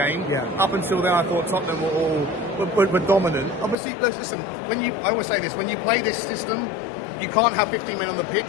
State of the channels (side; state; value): right; drops out; at 3.8 s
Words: Yeah. Up until then, I thought Tottenham were dominant. Obviously, listen, I always say this, when you play this system, you can't have 15 men on the